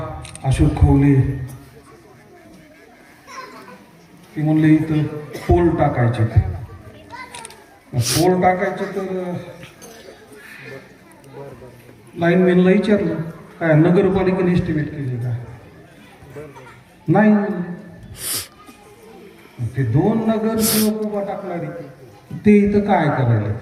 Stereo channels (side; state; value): both; identical; correlation 1.00